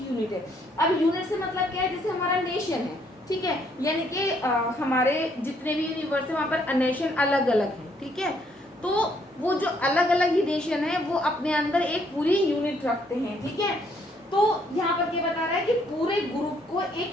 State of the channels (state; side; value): normal; both; correlation 0.68